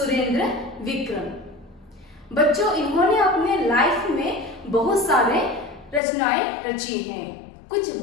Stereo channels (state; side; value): drops out; right; at 6.0 s